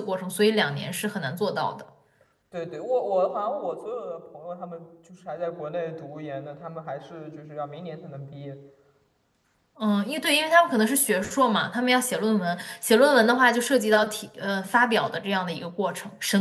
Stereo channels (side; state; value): both; identical; correlation 1.00